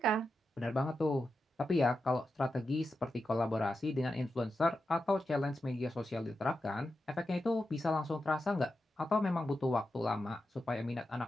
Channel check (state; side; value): normal; both; correlation 0.89